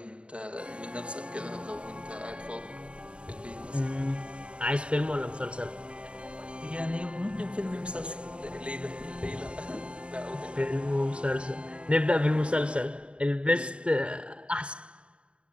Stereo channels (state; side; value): late; left; 0.057 ms